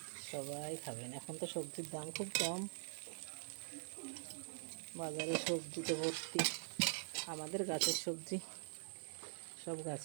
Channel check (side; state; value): left; silent; digital silence